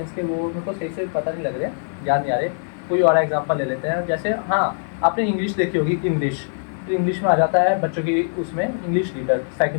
के वो मेरे को सही से पता नहीं लग रहे, याद नहीं आ रहे। कोई और एग्जांपल ले लेते हैं, जैसे हाँ आपने इंग्लिश देखी होगी, इंग्लिश, तो इंग्लिश में आ जाता है बच्चों की, उसमें इंग्लिश रीडर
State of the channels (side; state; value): right; silent; 64 dB below the other